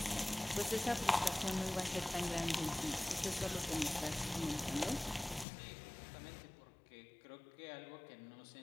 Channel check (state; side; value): drops out; right; at 5.5 s